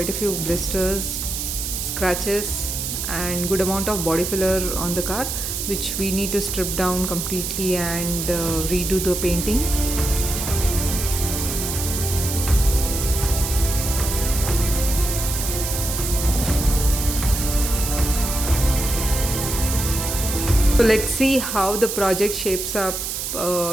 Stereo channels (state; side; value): noise; right; hiss, 4 dB below the sound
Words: a few blisters, scratches and good amount of body filler on the car, which we need to strip down completely and redo the painting. So let's see how the project shapes up,